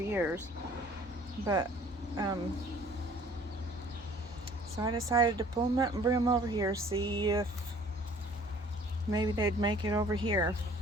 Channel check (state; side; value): normal; both; correlation 0.53